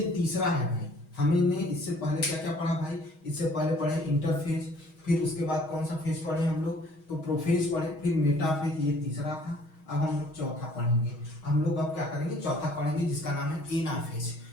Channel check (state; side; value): late; right; 6.3 ms